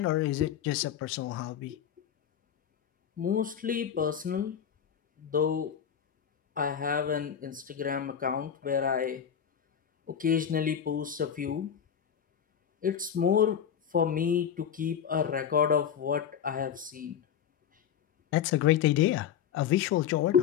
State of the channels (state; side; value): quieter; right; 8.7 dB